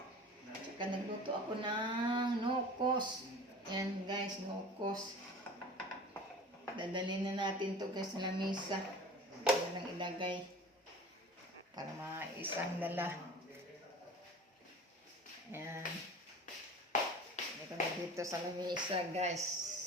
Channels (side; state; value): both; normal; correlation 0.40